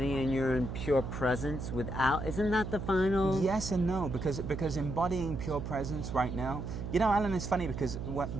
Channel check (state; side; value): noise; right; hum, 5 dB below the sound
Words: and you're in pure presence without? Isn't that the final? Yes and no, because embodying pure presence right now, Alan, it's funny because